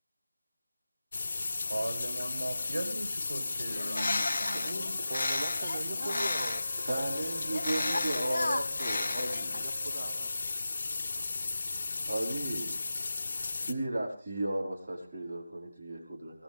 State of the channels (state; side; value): inverted; both; correlation -0.94